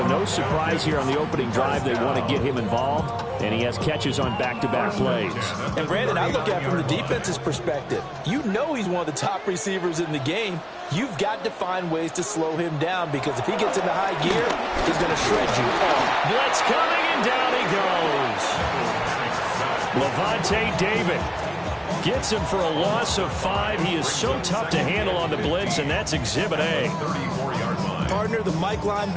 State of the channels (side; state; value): both; identical; correlation 1.00